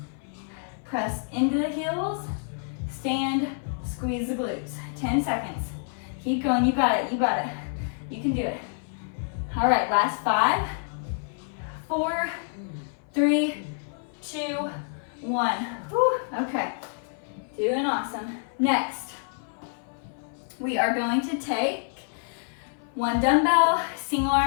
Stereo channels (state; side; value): silent; right; 58 dB below the other